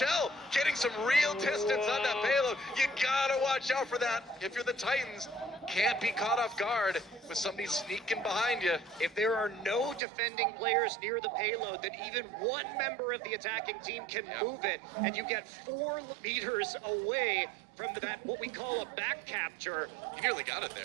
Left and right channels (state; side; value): drops out; left; at 10.0 s